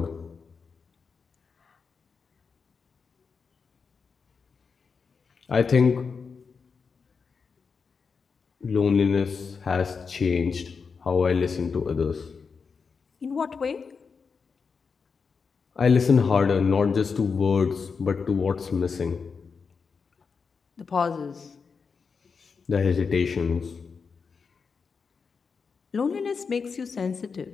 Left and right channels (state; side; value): quieter; right; 5.4 dB